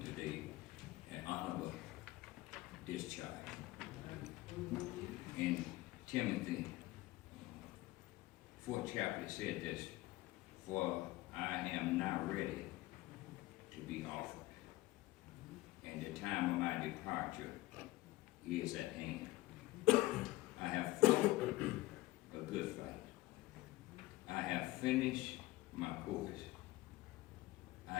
today an honorable discharge. In Timothy, 4th chapter said this, for I am now ready to be offered, and the time of my departure is at hand. I have fought a good fight. I have finished my course.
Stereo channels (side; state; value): right; quieter; 18.6 dB